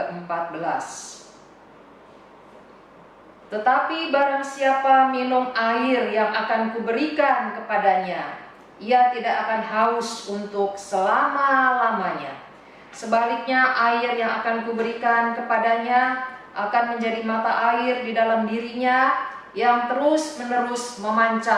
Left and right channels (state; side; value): identical; both; correlation 1.00